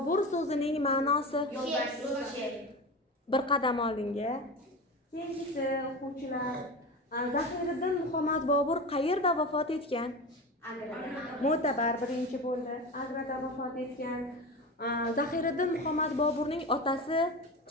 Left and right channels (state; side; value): normal; both; correlation 0.27